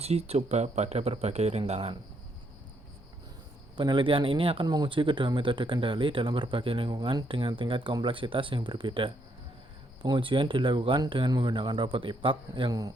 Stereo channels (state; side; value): normal; both; correlation 0.74